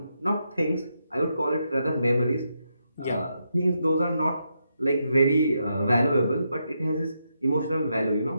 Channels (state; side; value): inverted; both; correlation -0.83